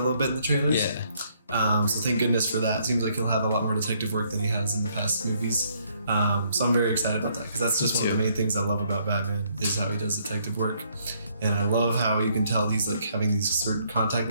little bit in the trailers. So thank goodness for that. It seems like he'll have a lot more detective work than he has in the past movies. So I'm very excited about that because that's just one of the main things I love about Batman is how he does detective work. And I love how you can tell he's like having these certain contact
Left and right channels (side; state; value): both; inverted; correlation -0.69